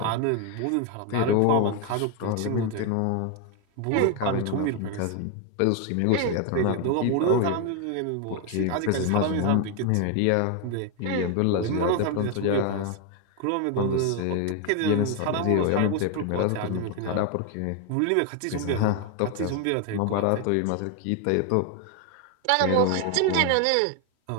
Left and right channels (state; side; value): different; both; correlation 0.01